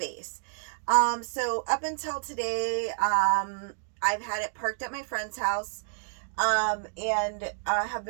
So up until today, I've had it parked at my friend's house, and have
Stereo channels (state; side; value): silent; left; digital silence